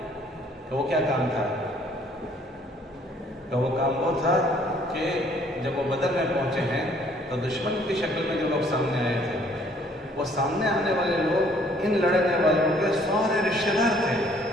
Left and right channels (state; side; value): normal; both; correlation 0.61